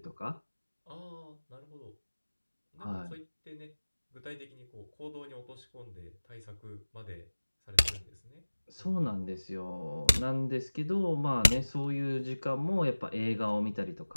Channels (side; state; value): both; inverted; correlation -1.00